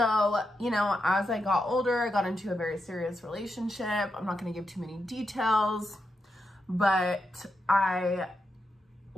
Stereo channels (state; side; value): normal; both; correlation 0.85